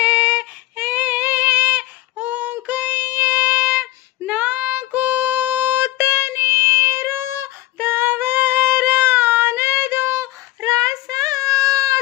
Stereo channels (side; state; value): right; quieter; 17.5 dB